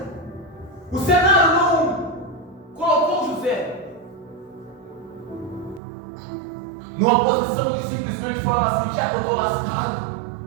O cenário não colocou José numa posição de simplesmente falar assim: já que eu estou lascado,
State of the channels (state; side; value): drops out; left; at 5.8 s